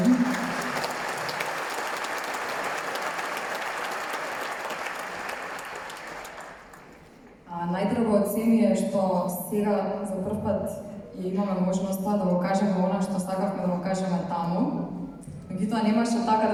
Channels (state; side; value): identical; both; correlation 1.00